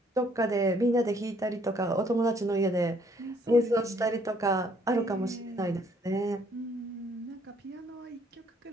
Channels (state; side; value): normal; both; correlation 0.65